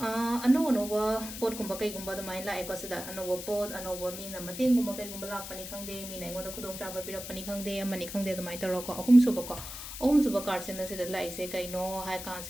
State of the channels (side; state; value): left; noise; hiss, 9 dB below the sound